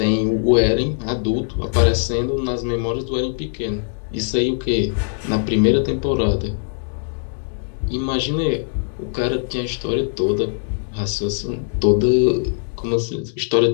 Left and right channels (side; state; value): right; silent; digital silence